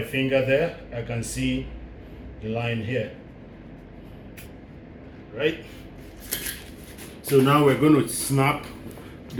finger there. I can see the line here, right? So now we're going to snap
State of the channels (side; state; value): both; identical; correlation 1.00